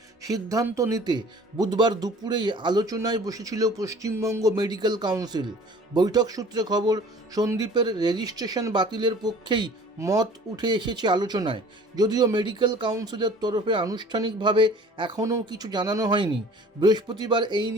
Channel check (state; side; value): normal; both; correlation 0.48